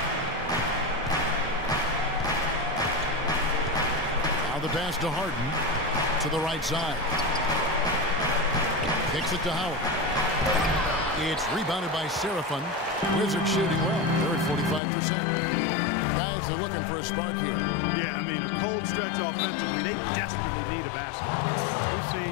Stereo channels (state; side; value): drops out; right; at 14.8 s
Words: Now the pass to Harden to the right side. Kicks it to Howard. It's rebounded by Serafin. Wizards shooting well. They're at 45%. Guys, they're looking for a spark here. Yeah, I mean, a cold stretch offensively. They desperately need a basket. We've